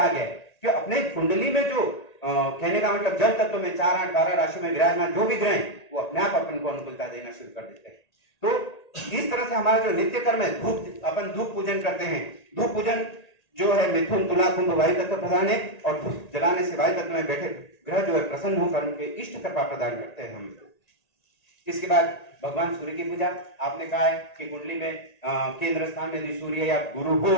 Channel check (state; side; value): late; right; 1.9 ms